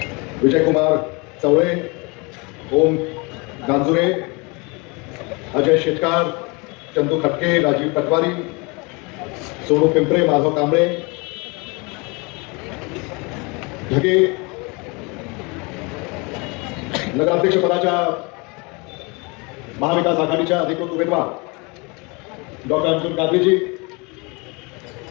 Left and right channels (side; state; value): right; quieter; 28.7 dB